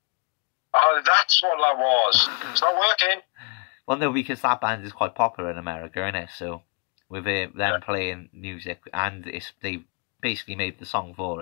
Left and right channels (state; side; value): quieter; right; 39.3 dB